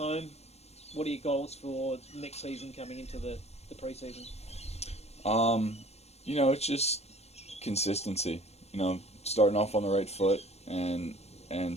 what are your goals for next season coming into the pre-season? It's just consistency. Starting off on the right foot and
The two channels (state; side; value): late; right; 0.31 ms